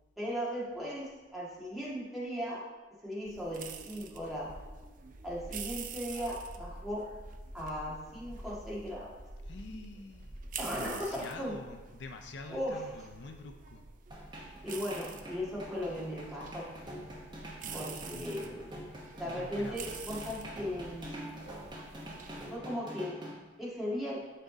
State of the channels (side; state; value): both; normal; correlation 0.60